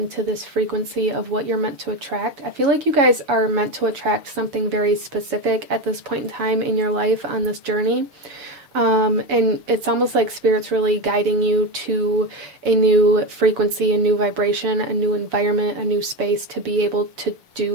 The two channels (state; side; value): late; left; 7.0 ms